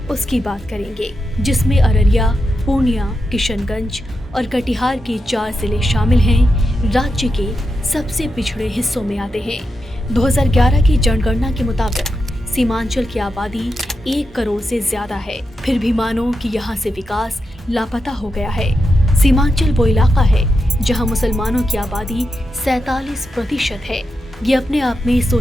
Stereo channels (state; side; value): normal; both; correlation 0.87